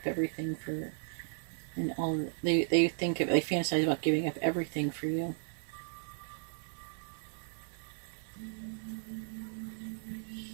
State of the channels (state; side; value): silent; left; 54 dB below the other